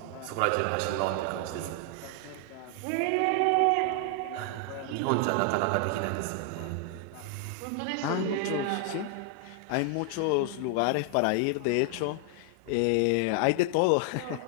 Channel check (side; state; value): both; different; correlation 0.00